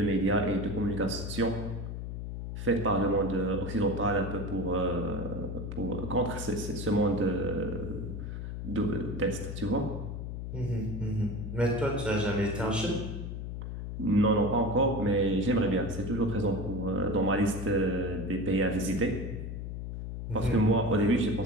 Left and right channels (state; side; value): noise; left; hum, 6 dB below the sound